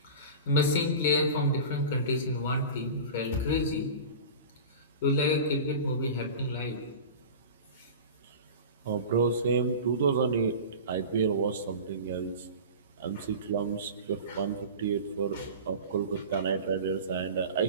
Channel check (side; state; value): both; inverted; correlation -0.33